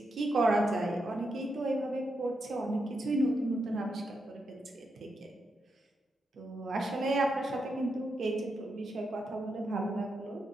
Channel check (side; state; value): both; normal; correlation 0.84